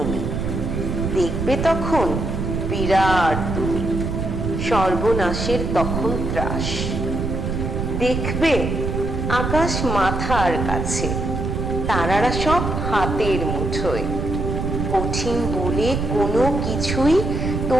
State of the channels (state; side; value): noise; right; rumble, 2 dB below the sound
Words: দেখবে তখন বিরাট তুমি, সর্বনাশের তখন ত্রাস। দেখবে আকাশ মাথার কাছে, তারারা সব হাতের মুঠোয়, কঠিন বলে কোনো কিছুই